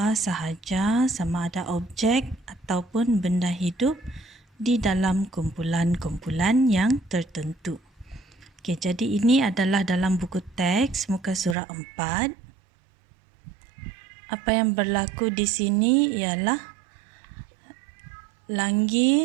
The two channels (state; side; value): drops out; left; at 11.6 s